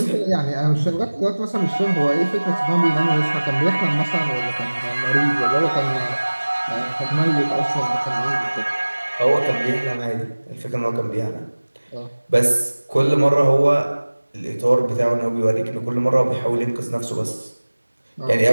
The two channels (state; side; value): inverted; both; correlation -1.00